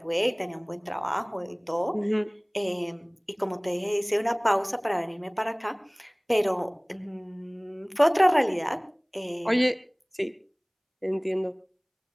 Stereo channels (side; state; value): both; identical; correlation 1.00